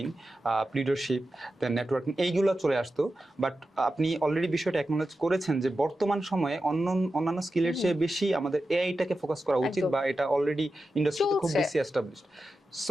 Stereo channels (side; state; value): both; normal; correlation 0.92